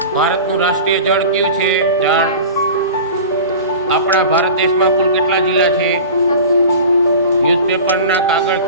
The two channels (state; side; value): inverted; both; correlation -0.36